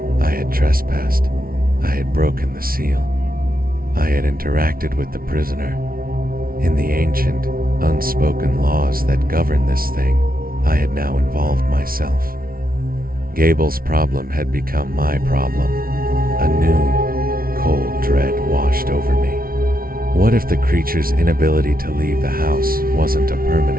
I had trespassed. I had broken the seal. I had interacted with the prisoner. In the ancient, unspoken laws that govern this thing, I had now involved myself. Gable's problem had become my problem. A new, cold dread washed over me. What if the creature's inability to leave the house wasn't a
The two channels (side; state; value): left; late; 0.43 ms